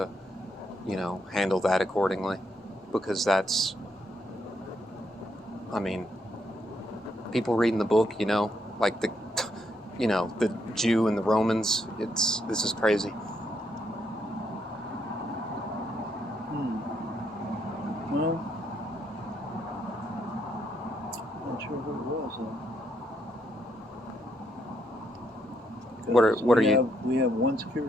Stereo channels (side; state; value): both; normal; correlation 0.76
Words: handle that accordingly. Because that's, I mean, people reading the book, like the Jew and the Romans. This is crazy. Well, not sure who it was. What are you? We have one